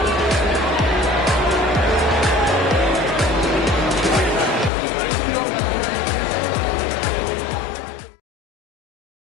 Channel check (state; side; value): drops out; right; at 4.7 s